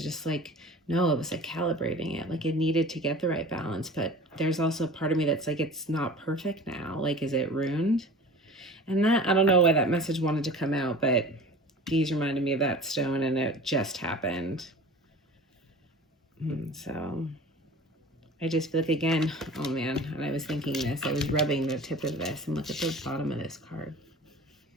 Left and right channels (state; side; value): normal; both; correlation 0.40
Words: just like, no, it was like calibrating it. Like it needed to get the right balance. But there's also a part of me that's like, it's not perfect now. Like, is it ruined? And that, I don't know why that message wanted to come out, but these reminded me of that stone, and it just happened. So I just feel like, again, oh man, and I was thinking this, I was rubbing the tip of this, and look at the bottom of this card.